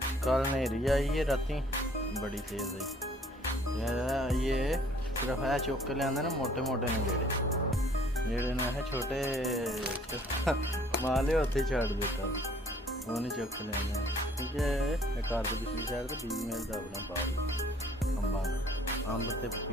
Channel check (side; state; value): both; normal; correlation 0.58